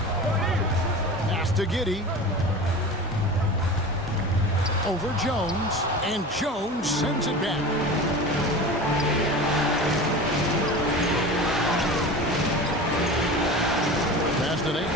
Pass to Giddey. Over Jones. And Jones sends it back. Pass to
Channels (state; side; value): normal; both; correlation 0.33